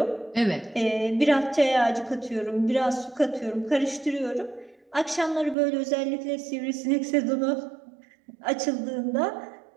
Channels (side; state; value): left; drops out; at 5.6 s